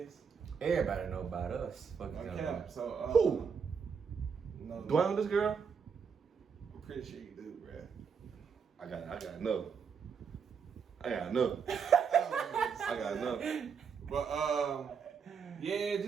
Everybody know about us. Fuck you Okay, so Who? No, Do I know this girl? I'm pretty sure you do, bruh. I got no. I got no. I got no. But yeah,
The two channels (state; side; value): quieter; left; 6.3 dB